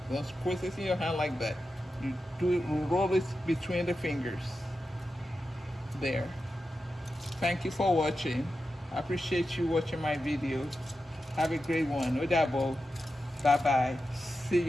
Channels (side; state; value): both; normal; correlation 0.91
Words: Don't squeeze it in your hand like that. You roll it between the fingers. There. Thank you for watching. I appreciate you watching my video. Have a great one. Odabo. Bye bye. See